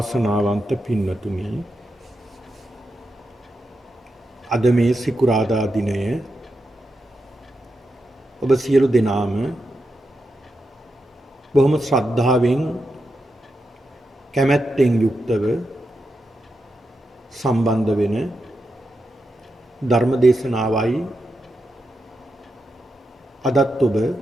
पिन्नतुनि අද මේ සිකුරාදා දිනය ඔබ සියලු දෙනාම බොහොම ශ්‍රද්ධාවෙන් කැමැත්තෙන් යුක්තව සම්බන්ධ වෙන ධර්ම දේශනාවයි අදත් ඔබ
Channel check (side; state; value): both; normal; correlation 0.87